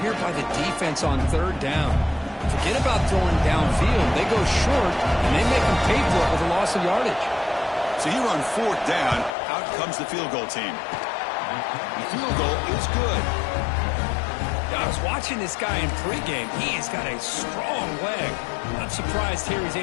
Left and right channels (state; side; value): drops out; right; at 9.3 s